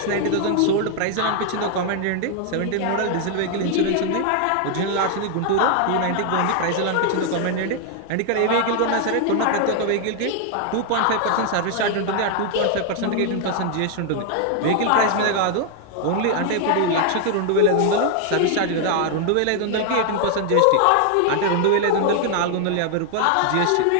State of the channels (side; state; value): both; different; correlation 0.00